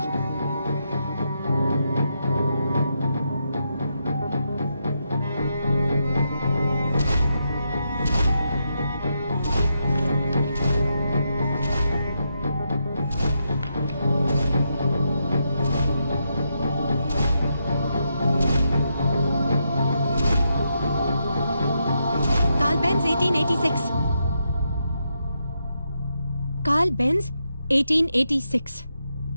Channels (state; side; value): inverted; both; correlation -0.82